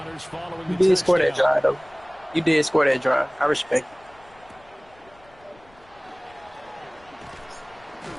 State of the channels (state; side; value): noise; left; rumble, 28 dB below the sound